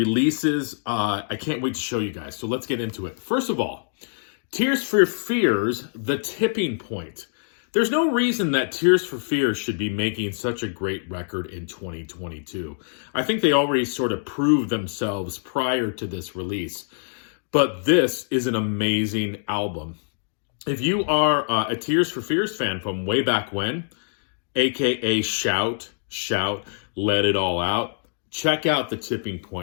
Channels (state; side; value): silent; right; digital silence